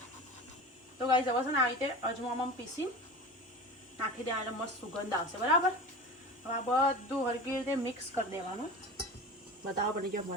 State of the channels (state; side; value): normal; both; correlation 0.32